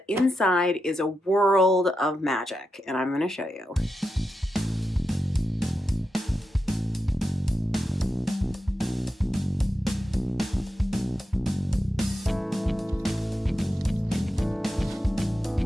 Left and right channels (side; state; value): both; normal; correlation 0.88